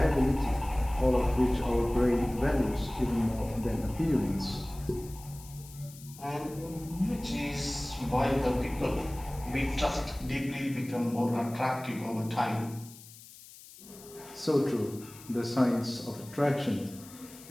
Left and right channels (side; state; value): left; noise; hiss, 19 dB below the sound